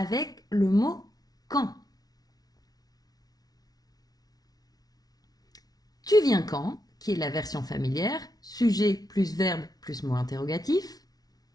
le mot quand. Tu viens quand, qui est la version familière, sujet plus verbe plus mot interrogatif.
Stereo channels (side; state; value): right; late; 0.19 ms